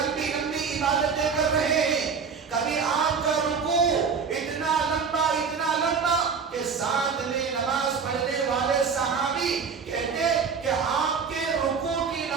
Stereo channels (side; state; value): left; quieter; 5.8 dB